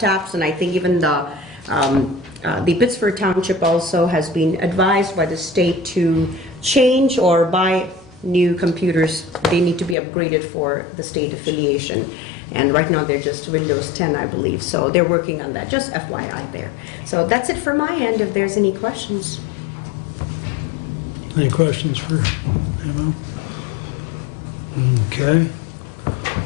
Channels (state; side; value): drops out; right; at 10.0 s